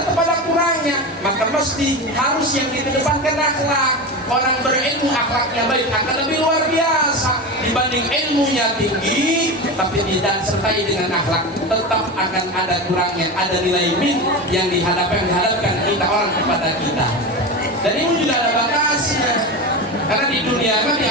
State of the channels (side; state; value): both; normal; correlation 0.23